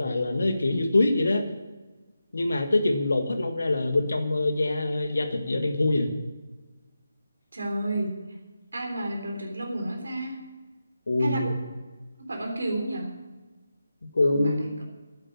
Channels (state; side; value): inverted; both; correlation -0.90